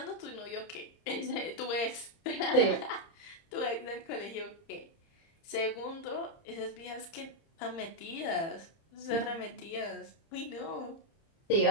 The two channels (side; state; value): right; late; 30 ms